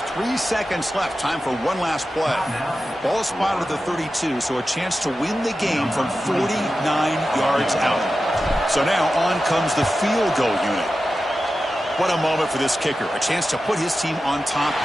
3 seconds left. Time for one last play. Ball spotted at the 32, so a chance to win the game from 49 yards out. So now on comes the field goal unit. What a moment for this kicker. A chance to put his team on top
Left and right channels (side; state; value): both; normal; correlation 0.93